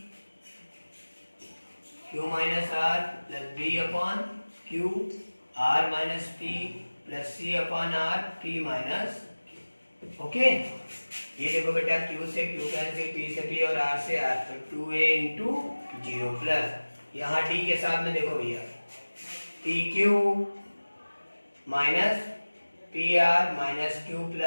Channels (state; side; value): inverted; both; correlation -1.00